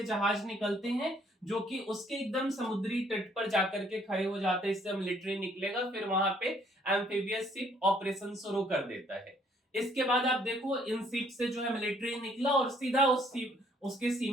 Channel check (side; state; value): both; normal; correlation 0.64